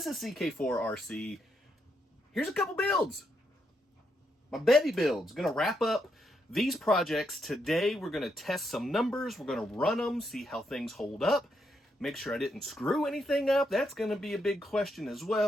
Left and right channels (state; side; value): normal; both; correlation 0.79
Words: is CK4RC. Here's a couple builds. My Betty builds. Gonna wrap up these projects today. We're gonna test some numbers. We're gonna run them, see how things hold up. Make sure I didn't screw anything up. That's gonna be a big question as